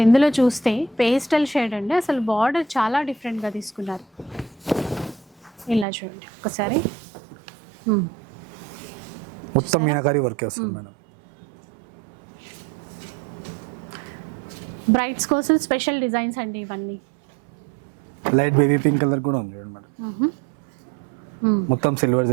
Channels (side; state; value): left; drops out; at 5.9 s